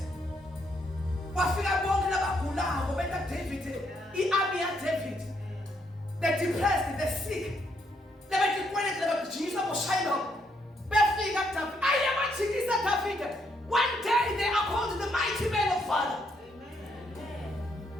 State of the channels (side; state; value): both; normal; correlation 0.74